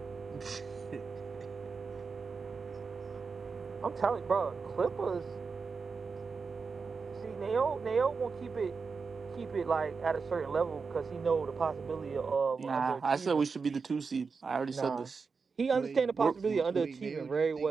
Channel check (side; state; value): left; quieter; 5.0 dB